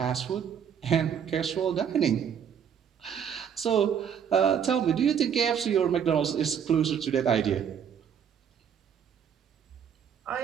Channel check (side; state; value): left; quieter; 8.1 dB